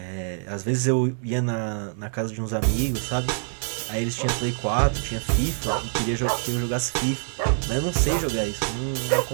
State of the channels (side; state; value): left; silent; 62 dB below the other